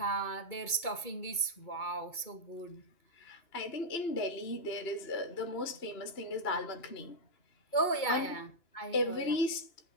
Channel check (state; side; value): late; right; 2.3 ms